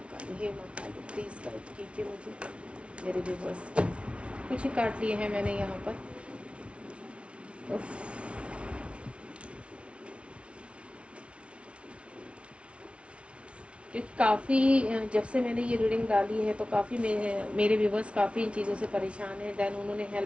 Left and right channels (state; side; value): late; left; 0.060 ms